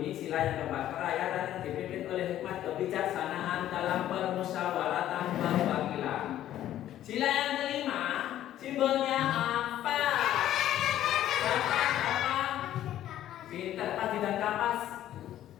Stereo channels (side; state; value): right; quieter; 12.4 dB